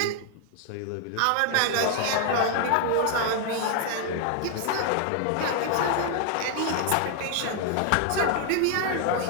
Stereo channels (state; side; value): different; both; correlation 0.00